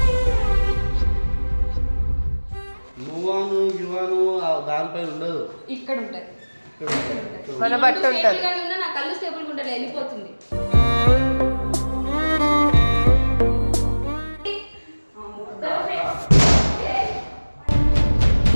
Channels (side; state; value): both; inverted; correlation -1.00